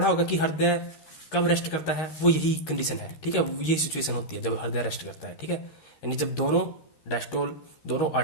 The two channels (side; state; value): right; late; 13 ms